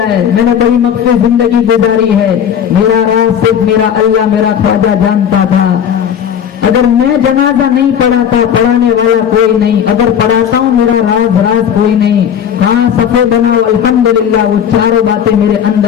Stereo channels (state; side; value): quieter; right; 8.7 dB